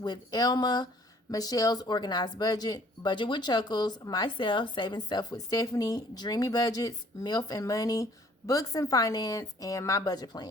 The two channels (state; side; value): normal; both; correlation 0.57